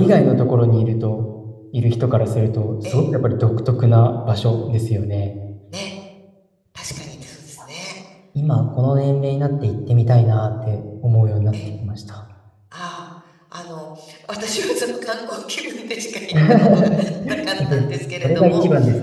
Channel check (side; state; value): both; identical; correlation 1.00